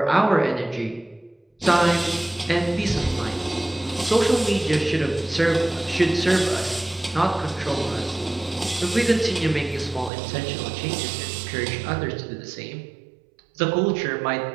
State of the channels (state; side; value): drops out; left; at 10.1 s